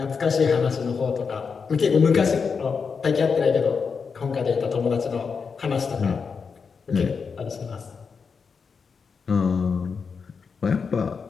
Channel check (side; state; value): right; quieter; 5.6 dB